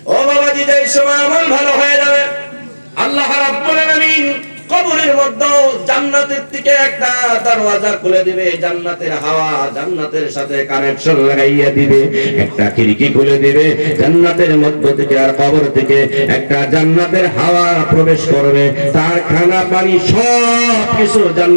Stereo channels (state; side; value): inverted; both; correlation -1.00